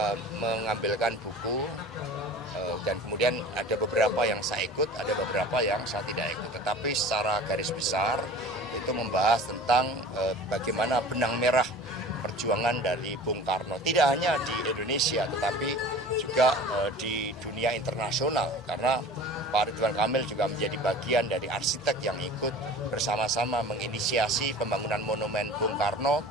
mengambilkan buku dan kemudian ada beberapa yang saya ikut, ada beberapa yang saya tidak ikut. Tetapi secara garis besar itu membahas tentang bagaimana benang merah perjuangan dari Bung Karno, tidak hanya di Indonesia tetapi juga di dunia internasional, karena Pak Ridwan Kamil juga menjadi bagian dari arsitek yang ikut bersama-sama menginisiasi pembangunan monumen Bung Karno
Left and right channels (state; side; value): normal; both; correlation 0.41